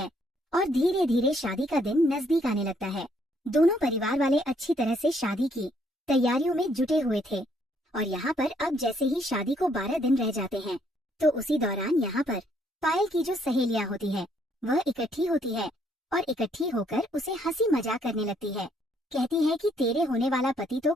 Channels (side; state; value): both; normal; correlation 0.69